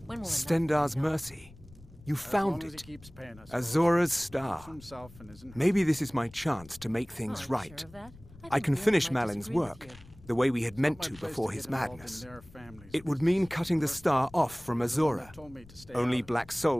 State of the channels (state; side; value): noise; left; rumble, 21 dB below the sound